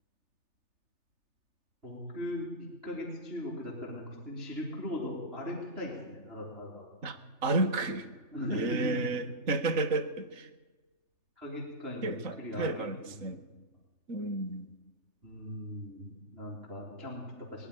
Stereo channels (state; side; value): late; left; 3.3 ms